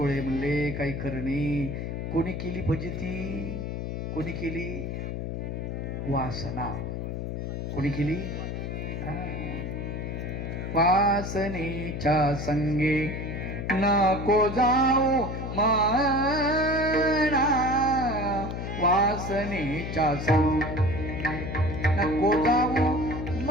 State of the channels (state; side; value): noise; left; hum, 4 dB below the sound